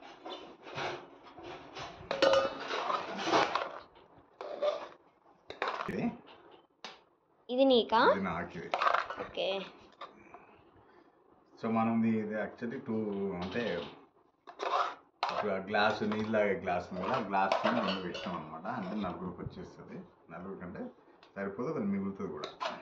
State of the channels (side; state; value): both; identical; correlation 1.00